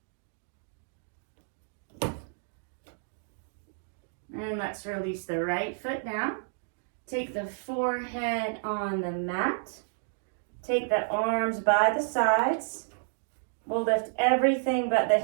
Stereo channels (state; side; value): silent; left; digital silence